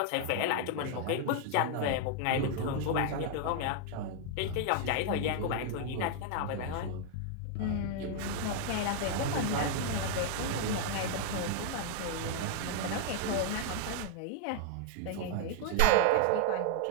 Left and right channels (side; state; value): both; different; correlation 0.00